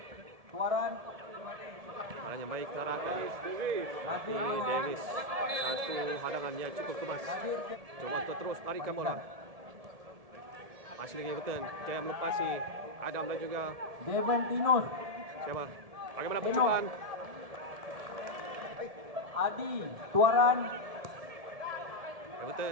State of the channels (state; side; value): late; left; 1.7 ms